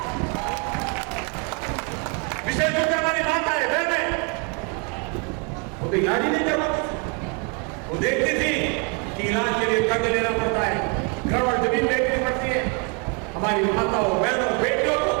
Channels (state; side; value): quieter; left; 33.9 dB